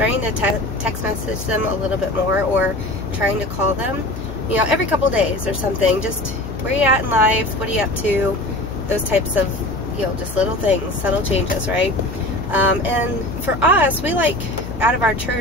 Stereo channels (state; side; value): noise; left; hum, 9 dB below the sound